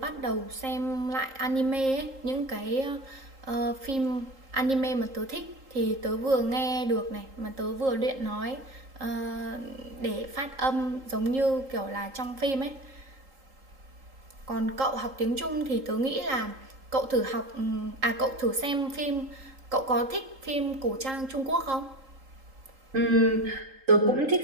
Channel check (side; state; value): left; late; 3.8 ms